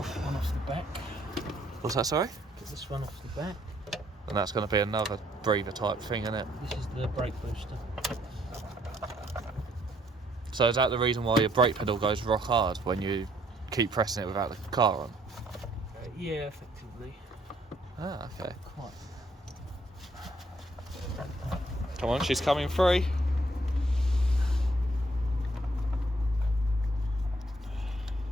One off the back. What's that, sorry? Get this one off the back. And that's going to be another breather type thing, isn't it? This is the brake booster. So is that the reason why your brake pedal goes rock hard when you keep pressing it without the car on? Yeah, effectively. Ah, okay. Quite. Come on, she's coming free.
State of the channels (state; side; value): normal; both; correlation 0.67